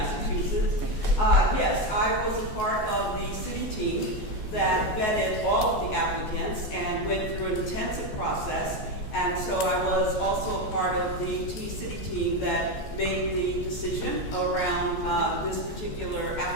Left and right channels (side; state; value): right; late; 14 ms